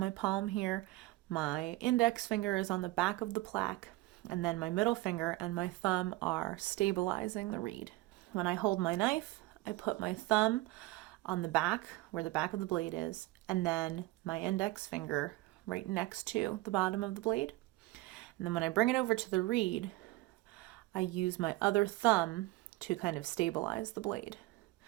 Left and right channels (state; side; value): quieter; left; 19.4 dB